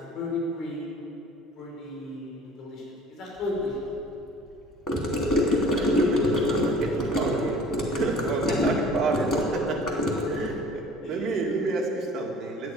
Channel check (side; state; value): both; normal; correlation 0.48